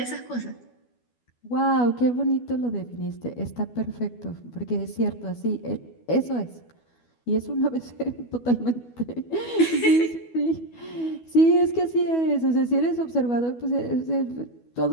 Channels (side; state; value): right; late; 12 ms